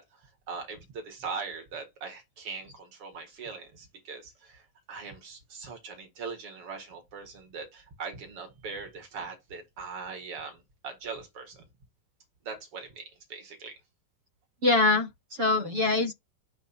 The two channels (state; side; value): late; left; 7.1 ms